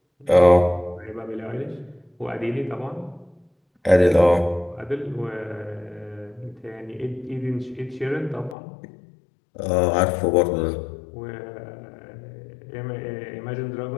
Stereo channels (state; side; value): drops out; right; at 8.6 s